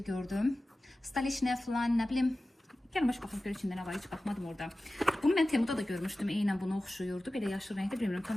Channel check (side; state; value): both; normal; correlation 0.96